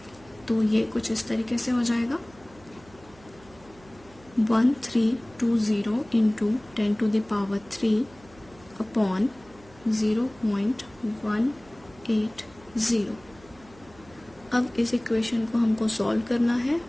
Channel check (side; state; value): right; noise; hum, 25 dB below the sound